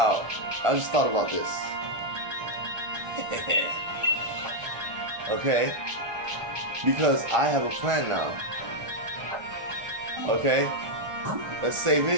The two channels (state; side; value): late; left; 1.4 ms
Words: I just thought about this. Okay? Because I have a plan now. Okay? Let's save